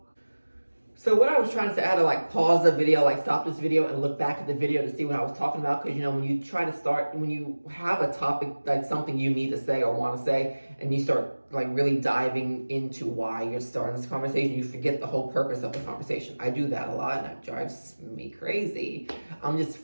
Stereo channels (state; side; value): inverted; both; correlation -1.00